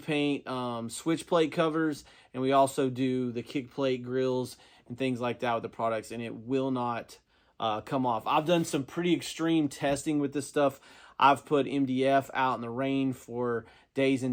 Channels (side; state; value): both; identical; correlation 1.00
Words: switch plate covers, and we also do the kick plate grills and things like that with the products, and it will not come off. I've done some pretty extreme testing with this stuff. I've put MDF out in the rain for days